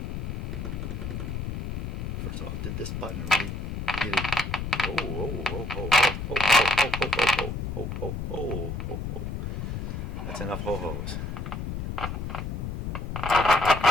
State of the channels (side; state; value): left; noise; rumble, 4 dB below the sound